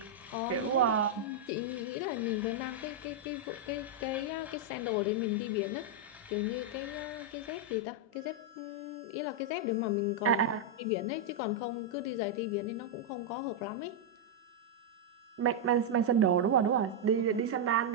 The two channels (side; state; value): both; normal; correlation -0.03